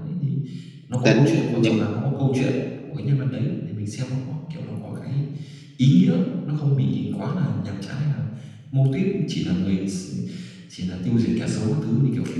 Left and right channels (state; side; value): identical; both; correlation 1.00